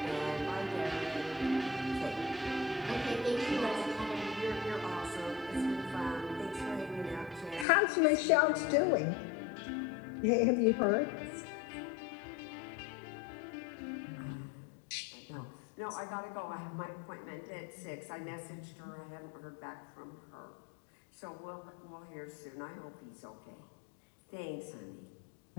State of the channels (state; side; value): drops out; right; at 7.7 s